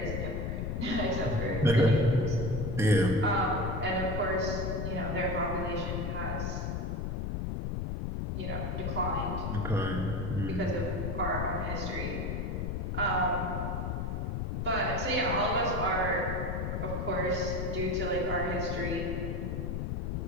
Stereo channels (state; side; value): noise; left; rumble, 2 dB below the sound